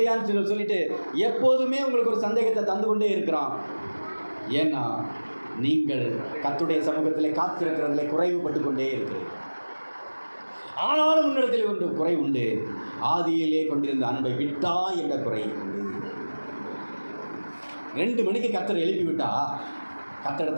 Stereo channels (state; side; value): inverted; both; correlation -1.00